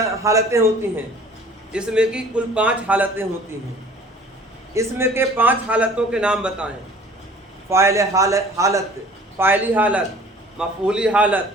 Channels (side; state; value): both; normal; correlation 0.49